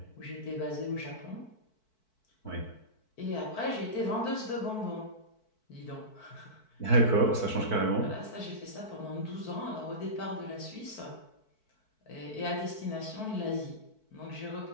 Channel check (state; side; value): late; right; 4.6 ms